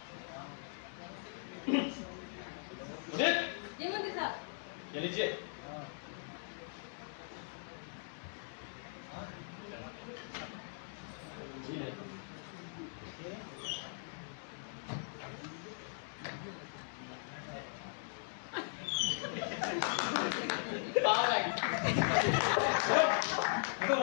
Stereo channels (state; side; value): silent; right; digital silence